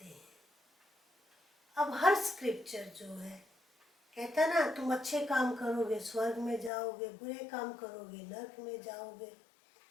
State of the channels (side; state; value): right; drops out; at 6.7 s